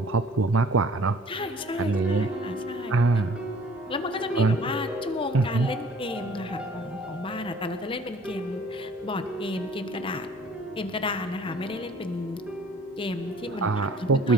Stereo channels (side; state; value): both; normal; correlation 0.52